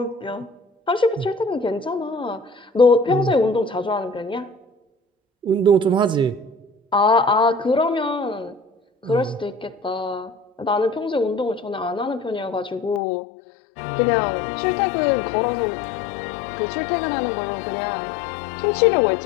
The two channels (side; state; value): right; drops out; at 13.0 s